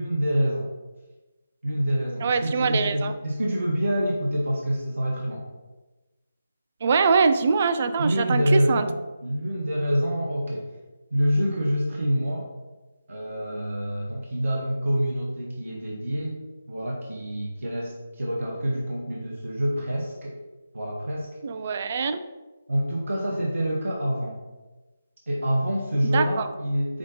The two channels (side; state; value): both; inverted; correlation -0.90